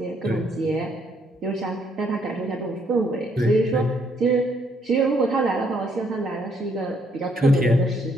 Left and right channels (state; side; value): normal; both; correlation 0.70